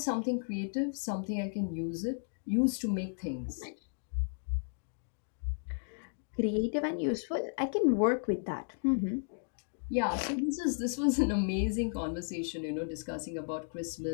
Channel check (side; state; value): right; silent; digital silence